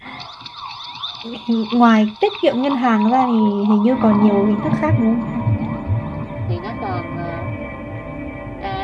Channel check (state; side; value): identical; both; correlation 1.00